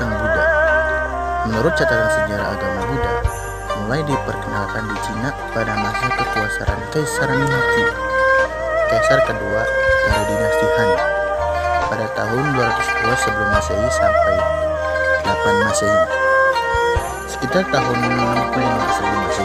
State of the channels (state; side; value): identical; both; correlation 1.00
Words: Buddha. Menurut catatan sejarah agama Buddha, mulai diperkenalkan di Cina pada masa kekuasaan Kaisar Mingqi, kaisar kedua dari dinasti Han, pada tahun 202 sebelum Masehi sampai 8 Masehi, sekitar tahun 65 sebelum